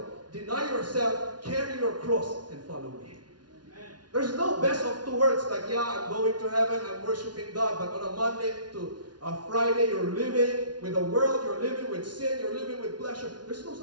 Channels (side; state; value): left; late; 0.69 ms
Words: deny yourself, carry your cross, and follow me. There's no best of two worlds like, yeah, I'm going to heaven, I'm worshiping God, but on a Monday to a Friday, you're living with the world, you're living with sin, you're living with pleasure. There's no